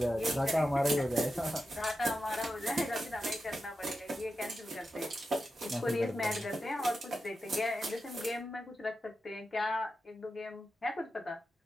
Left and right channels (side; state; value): both; normal; correlation 0.90